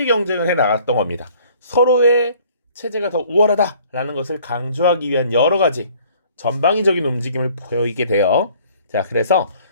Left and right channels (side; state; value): both; inverted; correlation -0.56